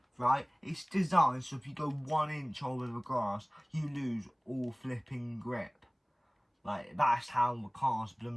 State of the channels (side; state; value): both; identical; correlation 1.00